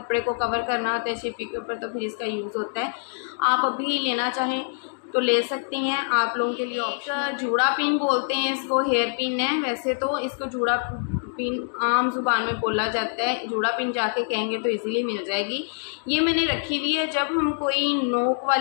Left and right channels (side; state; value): right; silent; digital silence